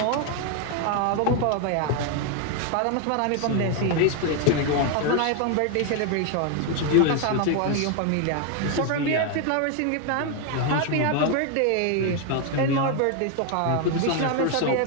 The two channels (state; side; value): different; both; correlation 0.01